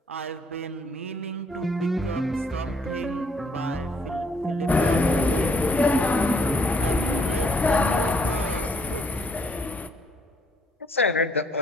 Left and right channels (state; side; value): normal; both; correlation 0.67